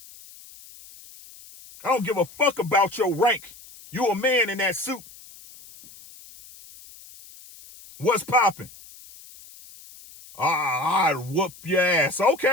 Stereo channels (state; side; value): noise; left; hiss, 21 dB below the sound